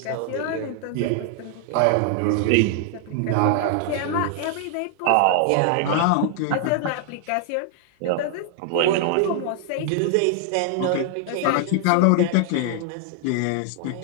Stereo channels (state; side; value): different; both; correlation 0.00